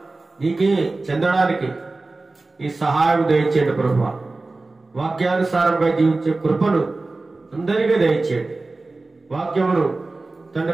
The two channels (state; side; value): quieter; left; 3.3 dB